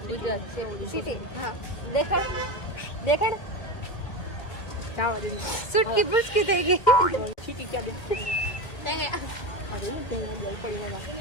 गुजरात सिटी हाँ देखड़ देखड़ सूट की बुश की देगी सिटी क्या दे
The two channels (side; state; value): right; late; 2.1 ms